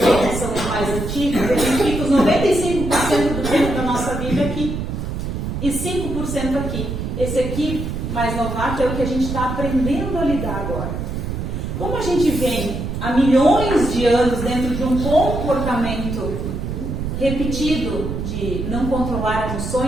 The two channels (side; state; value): right; noise; rumble, 4 dB below the sound